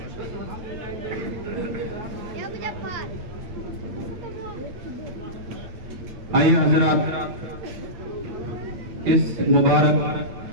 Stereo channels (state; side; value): late; left; 9.3 ms